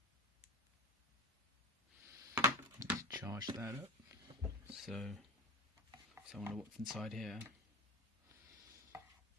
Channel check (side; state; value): both; normal; correlation 0.24